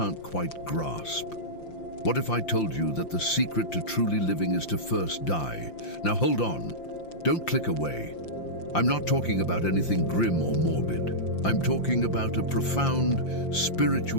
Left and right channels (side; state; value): right; late; 5.8 ms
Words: quite grasp. What if I told you that the secret to truly living is to first die? Now hold on, don't click away. I'm not talking about anything grim or morbid. I'm talking about a profound